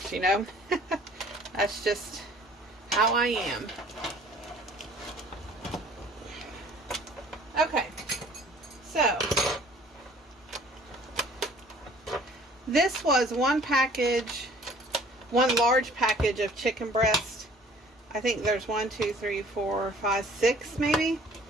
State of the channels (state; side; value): normal; both; correlation 0.53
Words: you know? That's just how I am. Okay, so this was one large package of chicken breast. I think there's 1, 2, 3, 4, 5, 6 maybe.